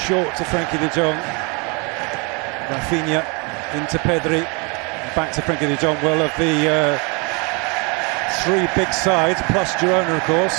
to Frenkie de Jong. Rafinha into Pedri, back to Frenkie de Jong. Well, of the three big sides, plus Girona, of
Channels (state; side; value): quieter; left; 31.3 dB